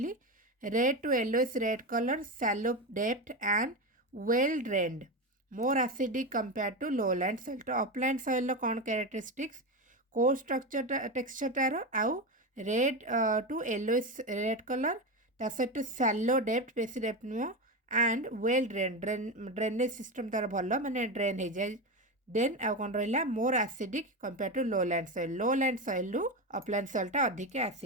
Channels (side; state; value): both; normal; correlation 0.17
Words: red to yellowish red colour shallow depth and well drained more acidic compare to lowland soil तो अपलैंड सॉइल कौन कैरेक्टरिस्टिक्स को स्ट्रक्चर टेक्सचर आउ red to yellowish red colour ता सहित शैलो डेप्थ बेसी डेप्थ नुह एंड वेल ड्रेनेज सिस्टम तार भल माने ड्रेन हो जाए देन आउ कौन रहा more acidic compare to low land soil रु अपलैंड सॉइलटा अधिक